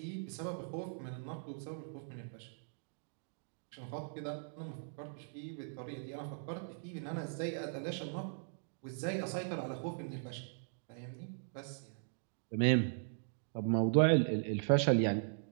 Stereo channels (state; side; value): silent; left; digital silence